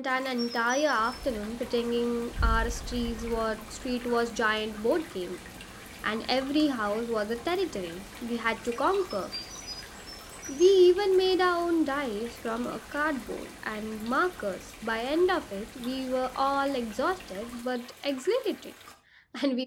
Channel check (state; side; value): identical; both; correlation 1.00